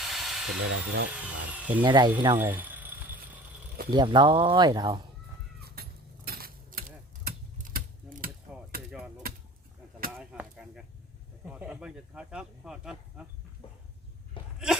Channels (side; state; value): both; normal; correlation 0.43